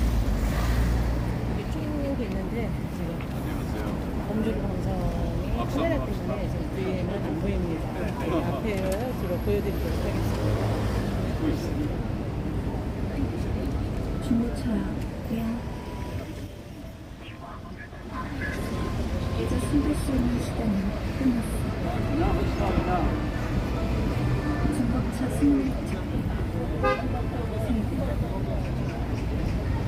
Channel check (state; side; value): identical; both; correlation 1.00